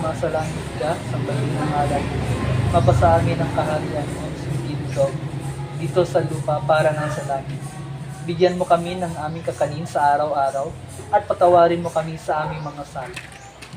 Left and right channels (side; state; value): both; identical; correlation 1.00